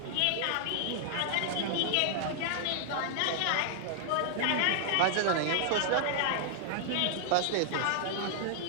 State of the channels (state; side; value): different; both; correlation -0.01